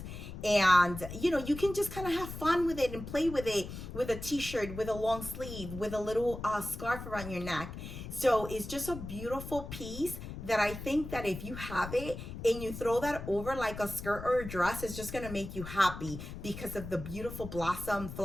And you can just kind of have fun with it and play with it with a t-shirt, with a long sleeve, with a little scarf around your neck. So it's just a beautiful piece that I think that if you have it and you throw that over like a skirt or a dress, it's just gonna make you happy because of the beautiful blossom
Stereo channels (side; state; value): left; noise; rumble, 10 dB below the sound